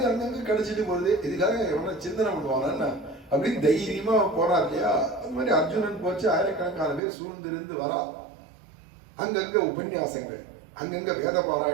அங்கங்க கிடைச்சிட்டு போகுது. இதுக்காக எவனா சிந்தனை பண்ணுவானா அப்படின்னு தைரியமா போறார் இல்லையா? அது மாதிரி அர்ஜுனன் போச்சு. ஆயிரக்கணக்கான பேர் சூழ்ந்திருந்து வரா. அங்கங்க உபன்யாசங்கள், அங்கங்க வேத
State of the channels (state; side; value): drops out; left; at 7.0 s